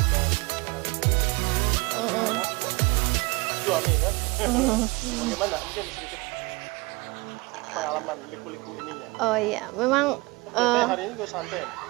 seorang ibu, anak, dan suami kan. Bagaimana? Mungkin sedikit pengalaman liku-liku ininya. Oh iya, memang Biasanya hari ini gue santai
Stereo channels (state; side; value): quieter; left; 25.2 dB